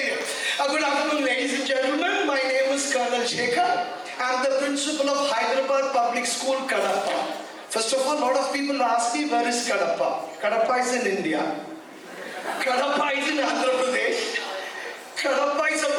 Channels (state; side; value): identical; both; correlation 1.00